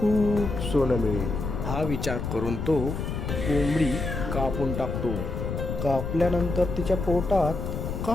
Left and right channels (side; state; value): left; noise; rumble, 4 dB below the sound